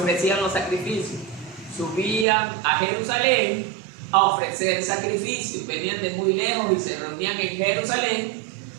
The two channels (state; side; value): drops out; left; at 2.2 s